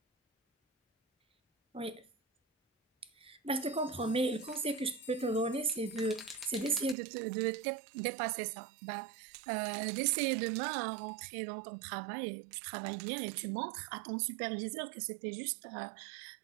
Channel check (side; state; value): left; drops out; at 7.0 s